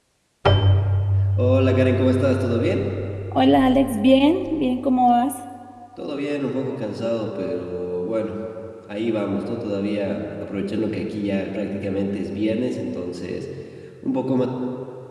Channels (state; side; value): identical; both; correlation 1.00